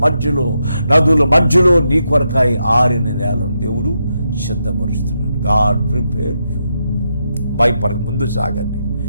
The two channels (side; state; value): both; inverted; correlation -0.83